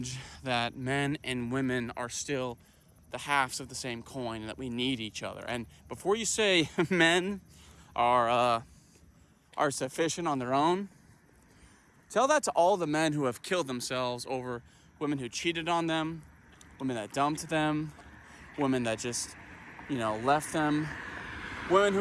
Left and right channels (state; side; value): identical; both; correlation 1.00